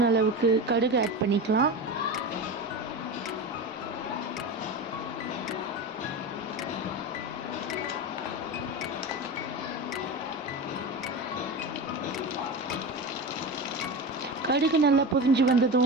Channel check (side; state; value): both; normal; correlation 0.24